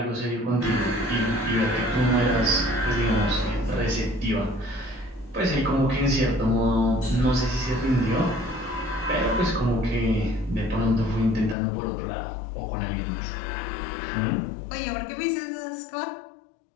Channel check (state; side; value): drops out; right; at 11.6 s